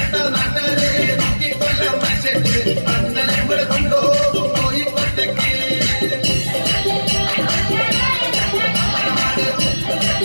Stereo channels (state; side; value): inverted; both; correlation -1.00